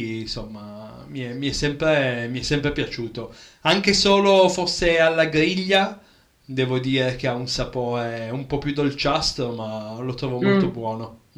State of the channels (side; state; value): both; identical; correlation 1.00